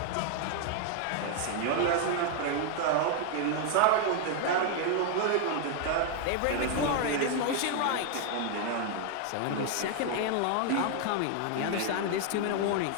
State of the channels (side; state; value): both; different; correlation 0.00